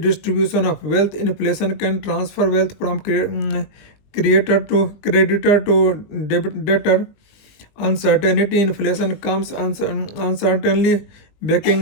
of wealth. Inflation can transfer wealth from creator to creditor to debtor. Uncertainty, inflation comes uncertainly,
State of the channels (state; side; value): late; right; 20 ms